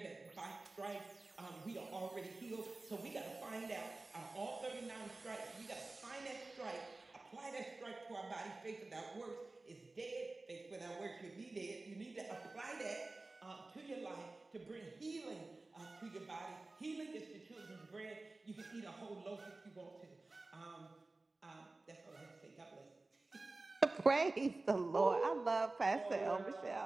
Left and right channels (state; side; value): quieter; left; 3.2 dB